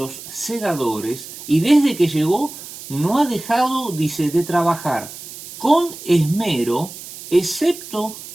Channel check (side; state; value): right; noise; hiss, 14 dB below the sound